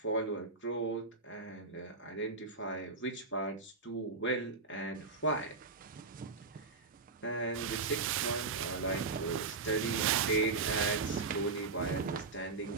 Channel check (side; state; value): left; quieter; 4.1 dB